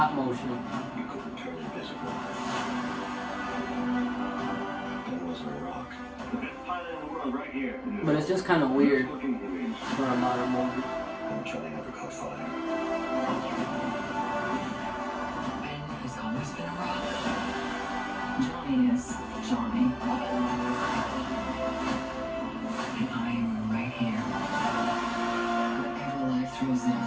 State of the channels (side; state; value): both; identical; correlation 1.00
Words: motion. You couldn't turn invisible. That wasn't a rock. The best pilot in the world right here. But it's just kind of weird Looking movies. for a modern movie. I'm trying to never caught fire. Ben has always been a rock. Johnny is Johnny. And I am right here. Whatever life throws at